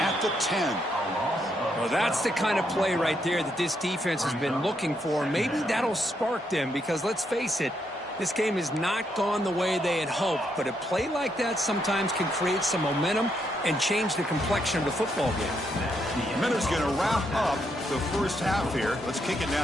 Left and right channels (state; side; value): normal; both; correlation 0.77